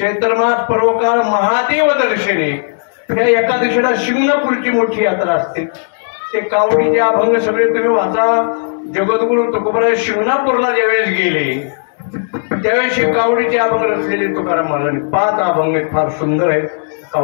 पर्व काळ महादेव दर्शने. या एकादशीला शिंगणापूरची मोठी यात्रा असते. ते कावडीचे अभंग सगळे तुम्ही वाचा. जगद्गुरु तुकोबराय शिंगणापूरला ज्यावेळेस गेले त्यावेळेस कावडीचे अभंग रचलेले तुकाराम महाराजांनी 5 अभंग आहेत. फार सुंदर आहेत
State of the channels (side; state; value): right; silent; digital silence